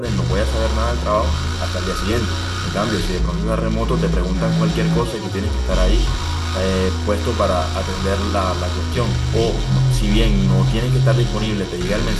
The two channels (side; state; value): both; identical; correlation 1.00